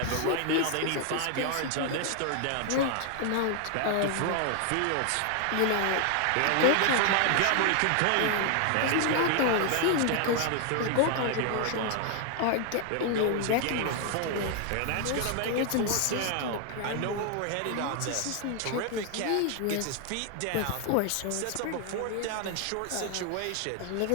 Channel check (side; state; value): both; different; correlation 0.00